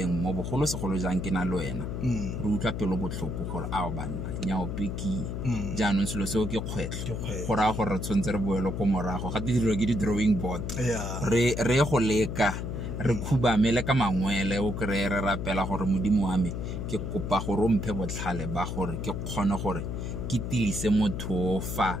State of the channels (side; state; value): left; noise; hum, 4 dB below the sound